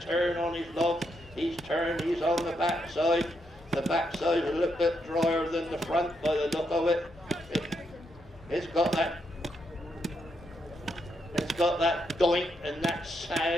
on his log. He's turned, he's on the back side. The back side a little bit drier than the front by the look of it. It's got that doink and that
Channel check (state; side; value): normal; both; correlation 0.80